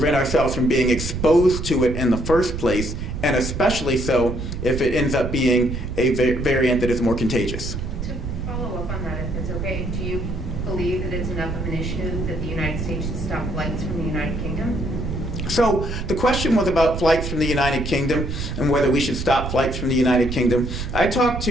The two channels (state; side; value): noise; right; rumble, 5 dB below the sound